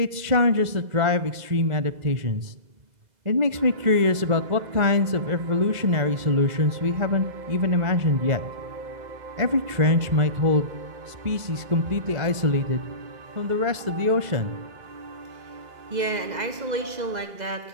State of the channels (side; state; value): left; late; 2.0 ms